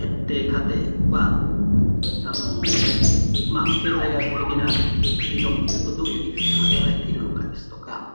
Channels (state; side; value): inverted; both; correlation -1.00